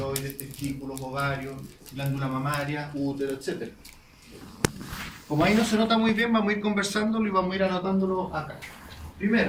testículos, ovarios, glándula mamaria, útero, etc. Como ahí no se nota muy bien, vamos a ir conversándolo y vamos a ir anotándolo acá.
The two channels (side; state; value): both; identical; correlation 1.00